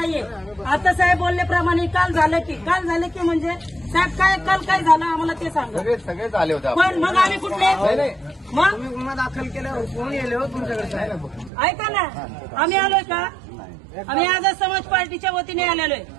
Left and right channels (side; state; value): left; drops out; at 11.5 s